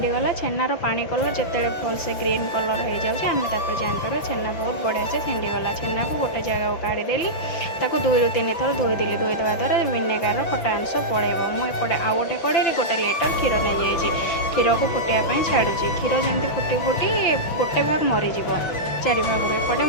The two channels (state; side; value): late; right; 5.9 ms